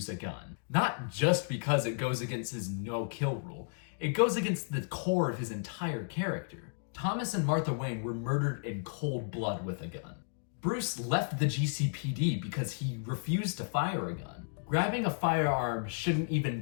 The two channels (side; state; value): right; silent; digital silence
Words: a gun. Not just because it goes against his no-kill rule, it goes against the core of his entire character. Thomas and Martha Wayne were murdered in cold blood with a gun. Bruce left the GCPD because he refused to fire a gun. Grabbing a firearm shouldn't